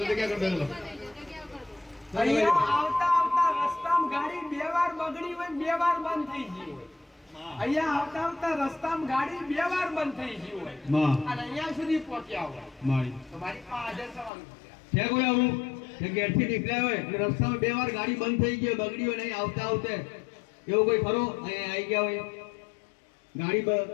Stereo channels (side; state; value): right; drops out; at 14.3 s